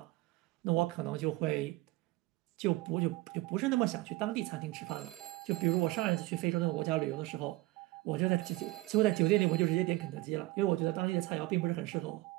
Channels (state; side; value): quieter; left; 19.5 dB